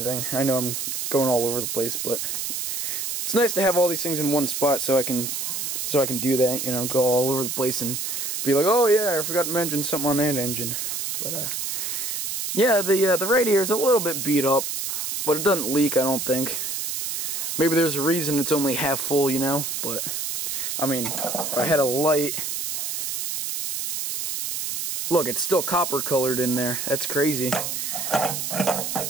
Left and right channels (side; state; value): right; noise; hiss, 3 dB below the sound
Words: I know I'm going all over the place, but it's nice to have all these things in one spot so I can do that, you know, go all over the place and be like, oh yeah, I forgot to mention something on that engine. But yeah, the radiator is a little bit beat up, but it doesn't leak, I don't think. Maybe there's a reason it's only half full, you know, but I mean, if I had a light. Look, it's still copper colored in there. That's crazy. But,